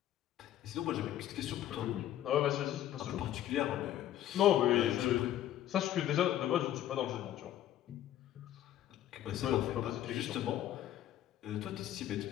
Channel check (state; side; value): quieter; right; 12.3 dB